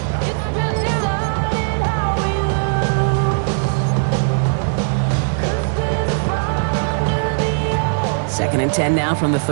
Second and 10 now from the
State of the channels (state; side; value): silent; left; digital silence